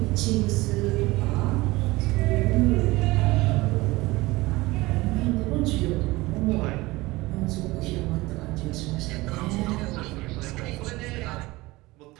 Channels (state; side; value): quieter; left; 20.6 dB